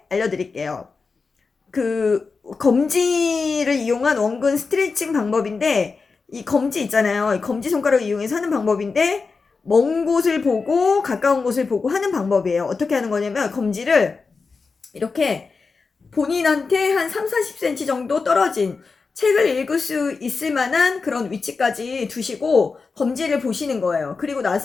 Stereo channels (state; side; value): quieter; right; 4.6 dB